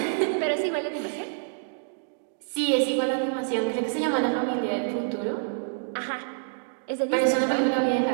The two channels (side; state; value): left; silent; digital silence